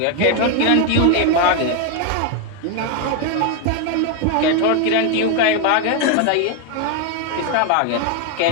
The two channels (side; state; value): both; different; correlation 0.01